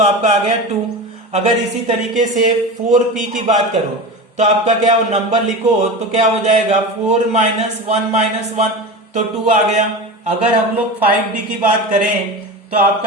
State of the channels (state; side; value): normal; both; correlation 0.27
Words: आपका आ गया 2। अगर इसी तरीके से 4p की बात करो तो आपका क्या नंबर लिखो तो क्या हो जाएगा 4 माइनस 1 माइनस 1, तो 2 आ गया। अगर हम लोग 5d की बात करें तो